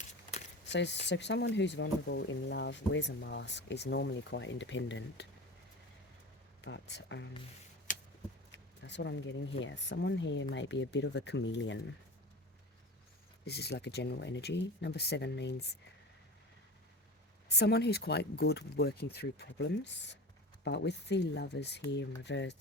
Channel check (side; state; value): both; normal; correlation 0.32